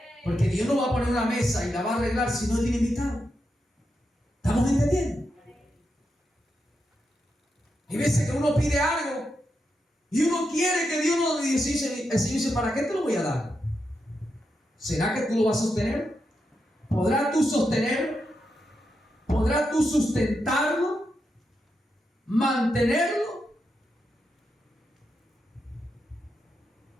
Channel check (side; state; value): both; normal; correlation 0.85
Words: Porque Dios no va a poner una mesa y la va a arreglar si no tiene invitados. ¿Estamos entendiendo? Hay veces que uno pide algo y uno quiere que Dios nos dice, el Señor dice, ¿para qué te lo voy a dar? ¿Será que tú lo vas a sostener? ¿Podrás tú sostenerlo? ¿Podrás tú sustentarlo? ¿Mantenerlo?